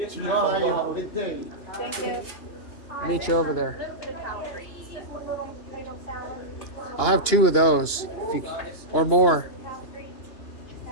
Thank you. Meet you over there. I'll have 2 of those, if you, or more.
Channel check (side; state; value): right; late; 2.9 ms